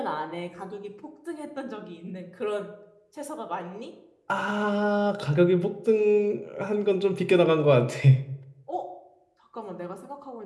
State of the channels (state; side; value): identical; both; correlation 1.00